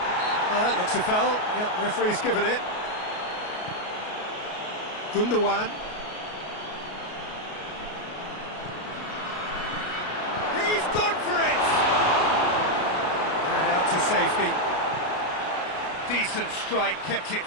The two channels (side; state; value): right; late; 33 ms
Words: Well, that looks a foul. Yep, referee's given it. Gundogan. He's gone for it! And out to safety. Decent strike, kept it